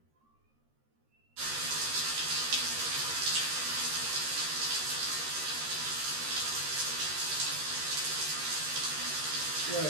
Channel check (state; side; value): late; left; 13 ms